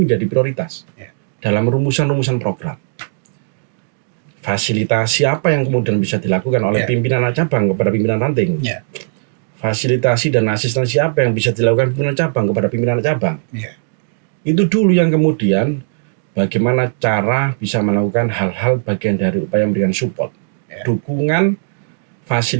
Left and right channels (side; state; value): left; silent; digital silence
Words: menjadi prioritas dalam rumusan-rumusan program. Fasilitasi apa yang kemudian bisa dilakukan oleh pimpinan cabang kepada pimpinan ranting? Fasilitasi dan asistensi apa yang bisa dilakukan pimpinan cabang kepada pimpinan cabang? Itu dulu yang kemudian bagaimana cara bisa melakukan hal-hal bagian dari upaya memberikan support, dukungan,